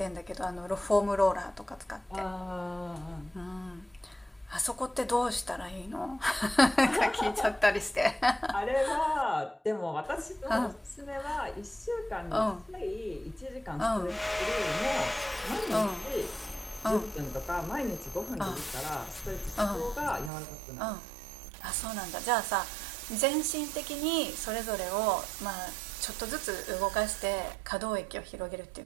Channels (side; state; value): left; drops out; at 20.3 s